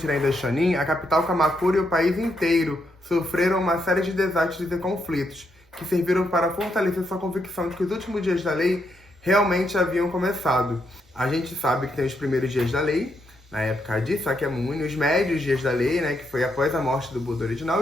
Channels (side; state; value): both; normal; correlation 0.79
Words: Daishonin, a capital Kamakura e o país inteiro sofreram uma série de desastres e conflitos, que serviram para fortalecer sua convicção de que os últimos dias da lei realmente haviam começado. A gente sabe que tem os primeiros dias da lei, na época de Sakyamuni, os médios dias da lei, que foi após a morte do Buda original,